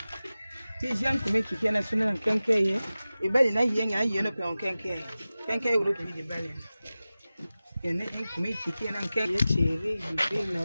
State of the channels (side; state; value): both; inverted; correlation -0.96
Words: si j'aime comme qui vient national en quinquet, et ben il y a un yen en quinquet. Quinquet ou le pays de Balen. Il y a un comme qui vient en quinquet, chéri, je fais